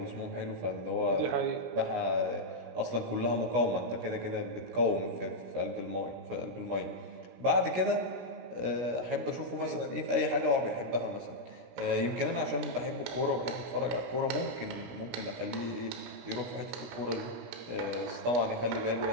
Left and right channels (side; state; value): left; late; 16 ms